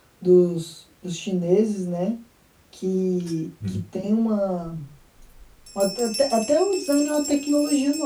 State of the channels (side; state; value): both; identical; correlation 1.00